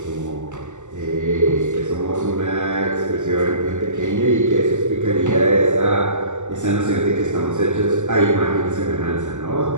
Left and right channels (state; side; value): late; left; 0.84 ms